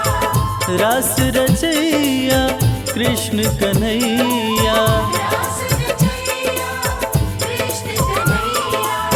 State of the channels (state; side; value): identical; both; correlation 1.00